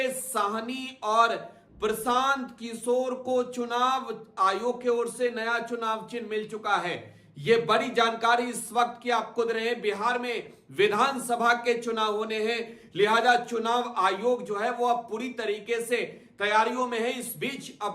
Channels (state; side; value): identical; both; correlation 1.00